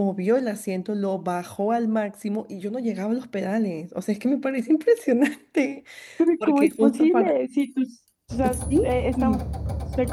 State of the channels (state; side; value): identical; both; correlation 1.00